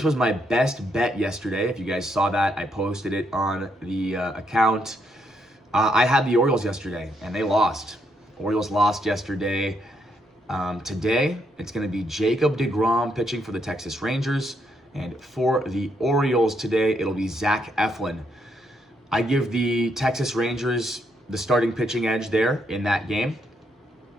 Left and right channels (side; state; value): both; normal; correlation 0.76